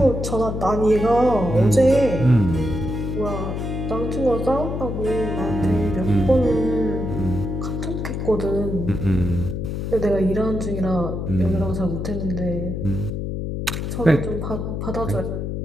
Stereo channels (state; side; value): noise; left; hum, 3 dB below the sound